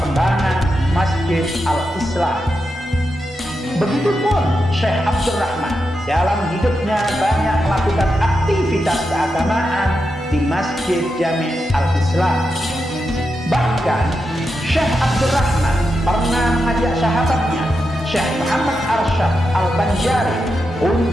Masjid Al-Islam. Begitupun Syekh Abdurrahman dalam hidupnya banyak melakukan aktivitas keagamaan di Masjid Jami Al-Islam. Bahkan Syekh Abdurrahman pernah mengajak sahabatnya Syekh Muhammad Arsyad Al-Banjari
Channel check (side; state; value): both; normal; correlation 0.87